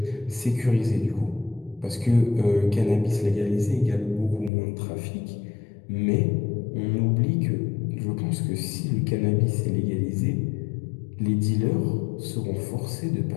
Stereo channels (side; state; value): right; drops out; at 4.5 s